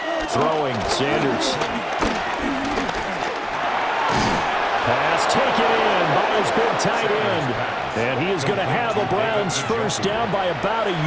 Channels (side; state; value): both; identical; correlation 1.00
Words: Throwing, Sanders. Pass taken in by his big tight end. And he is going to have the Browns first down by about a